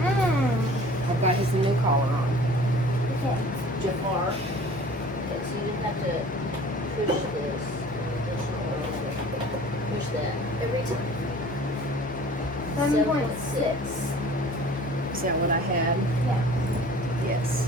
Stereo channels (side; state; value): both; normal; correlation 0.47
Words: I've got his new collar on. Okay. Jafar. Okay, so you have to push this. Push that every time. 7.6. Is that what I had? Yeah. Yes.